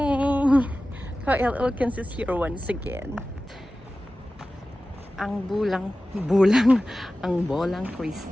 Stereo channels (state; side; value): normal; both; correlation 0.96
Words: Kyle Elkins is here once again. Ang ang bolang